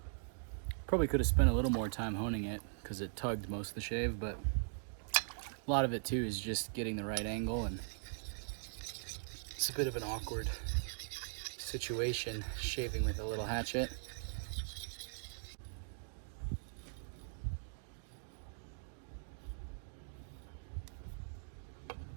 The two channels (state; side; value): silent; left; digital silence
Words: Probably could have spent a little more time honing it because it tugged most of the shave, but a lot of it too is just getting the right angle, and it's a bit of an awkward situation shaving with a little hatchet.